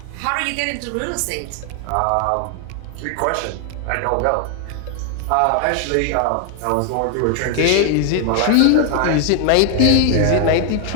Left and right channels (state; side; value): different; both; correlation 0.00